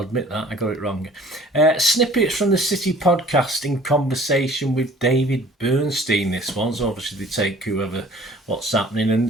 that. I got it wrong. Snippets from the City podcast in conversation with David Bernstein, this one. So obviously they take what's happening.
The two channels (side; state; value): both; normal; correlation 0.51